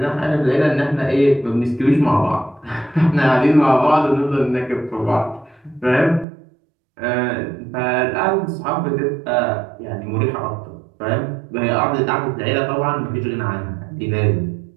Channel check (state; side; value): drops out; left; at 6.2 s